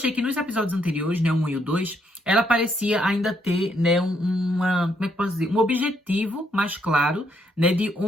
que nos episódios anteriores, né, o 1 e o 2, ela parecia ainda ter, né, como é que posso dizer? Um objetivo mais claro, né, de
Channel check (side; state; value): both; normal; correlation 0.74